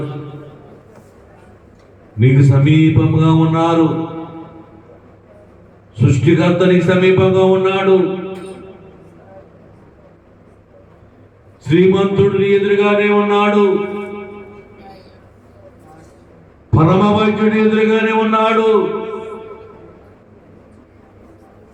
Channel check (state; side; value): identical; both; correlation 1.00